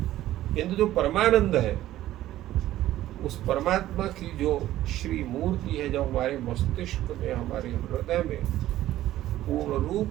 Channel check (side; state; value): left; quieter; 14.1 dB